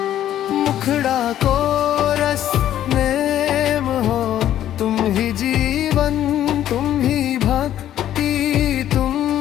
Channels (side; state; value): right; quieter; 11.7 dB